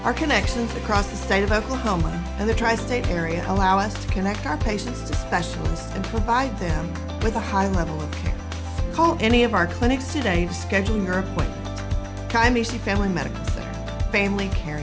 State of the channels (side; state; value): both; identical; correlation 1.00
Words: Our connections across the state of Oklahoma and the tri-state area allow us to connect our patients to specialists and provide them with a high level of care. Call any of our clinics today to schedule your appointment. Kiamichi Family Medical Center, family